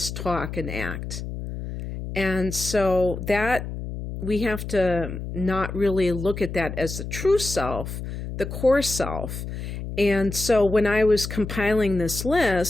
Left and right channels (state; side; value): noise; left; hum, 7 dB below the sound